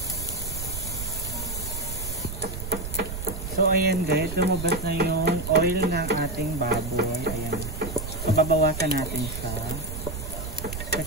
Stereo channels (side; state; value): right; noise; rumble, 7 dB below the sound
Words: So, ayan guys, lumabas na yung oil ng ating baboy. Ayan. So, babawasan natin siya.